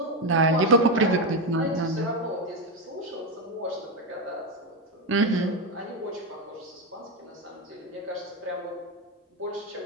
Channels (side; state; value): both; normal; correlation 0.10